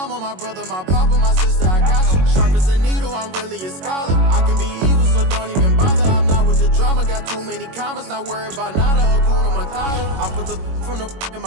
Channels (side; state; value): left; late; 22 ms